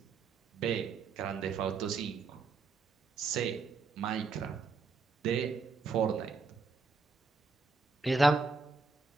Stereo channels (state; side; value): quieter; left; 4.3 dB